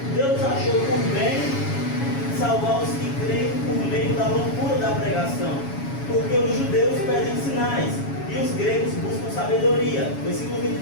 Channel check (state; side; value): late; right; 7.2 ms